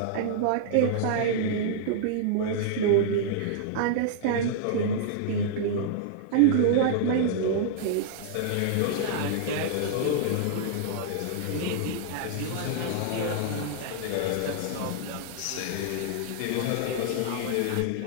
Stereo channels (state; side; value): different; both; correlation -0.01